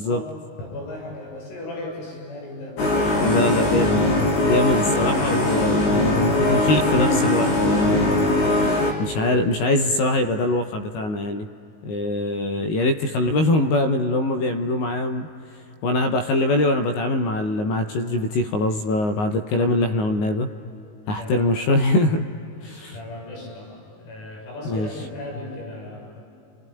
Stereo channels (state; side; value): late; right; 19 ms